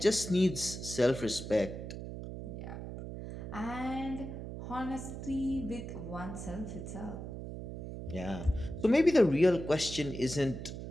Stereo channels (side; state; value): right; noise; hum, 8 dB below the sound